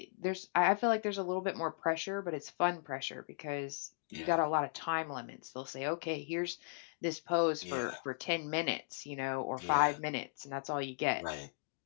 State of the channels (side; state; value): right; silent; digital silence